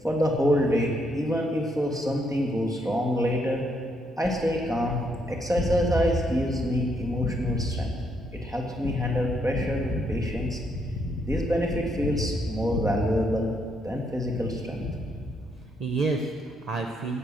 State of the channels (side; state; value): both; normal; correlation 0.75